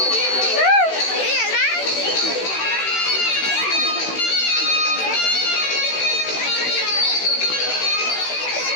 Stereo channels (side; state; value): right; late; 16 ms